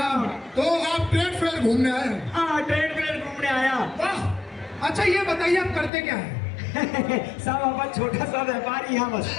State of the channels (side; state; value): right; drops out; at 5.9 s